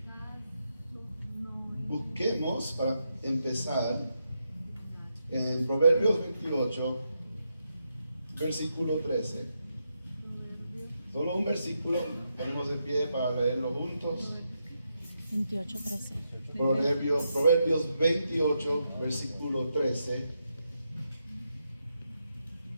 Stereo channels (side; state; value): both; inverted; correlation -0.83